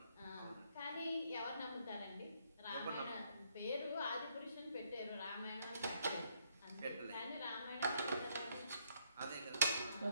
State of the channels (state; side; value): inverted; both; correlation -0.71